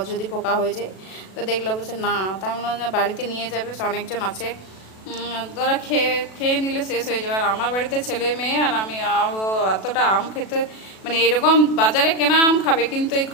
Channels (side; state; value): right; late; 37 ms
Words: যদি পোকা হয়ে যায়, তো দেখলো বলছে না, তাই বললাম বাড়িতে নিয়ে যাবে, অনেকজন আছে, ওরা খেয়ে খেয়ে নিলে শেষ হয়ে যাবে। আর আমার বাড়িতে ছেলে মেয়ে আর আমি, এতটা আম খেতে, মানে এরকম বাজারে কেনা আম খাবে, কিন্তু এই